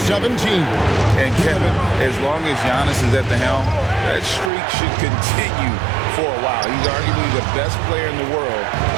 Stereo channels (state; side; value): drops out; left; at 4.5 s